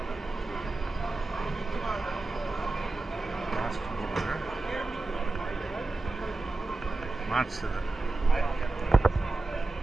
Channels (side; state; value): left; quieter; 3.2 dB